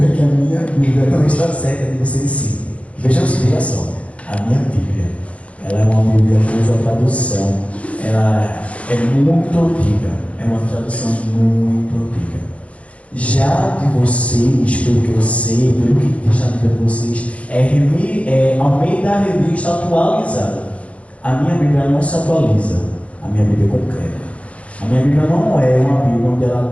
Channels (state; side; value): late; right; 0.064 ms